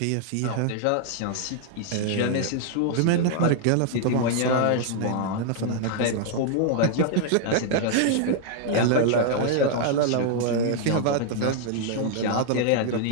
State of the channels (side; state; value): both; different; correlation 0.00